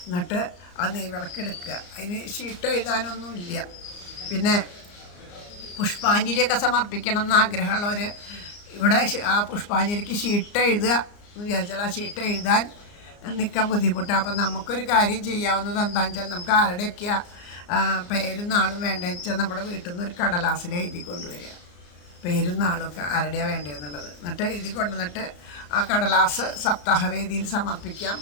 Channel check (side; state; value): right; late; 34 ms